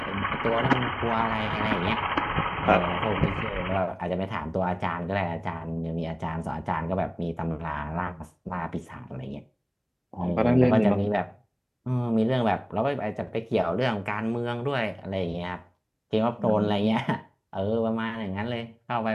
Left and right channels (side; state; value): both; identical; correlation 1.00